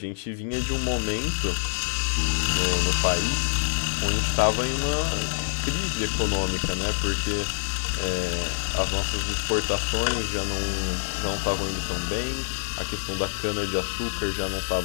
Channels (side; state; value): right; silent; digital silence